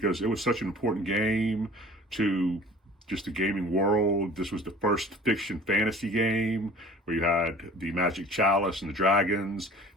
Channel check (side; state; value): both; normal; correlation 0.46